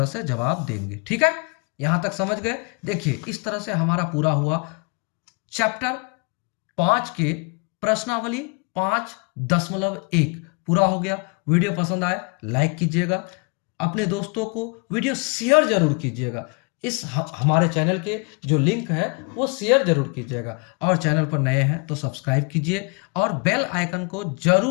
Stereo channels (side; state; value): right; quieter; 33.5 dB